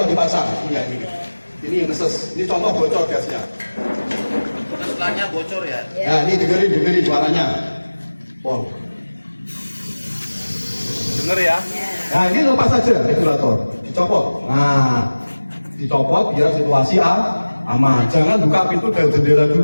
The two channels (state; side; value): inverted; both; correlation -1.00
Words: dipasang. Ini neses, ini contoh bocor gasnya. Setelahnya bocor ya. Nah, ini dengerin suaranya. Wow. Denger ya. Nah, ini lepas saja regulator, dicopot. Nah, dicopot biar situasi aman. Jangan buka pintu dan jendela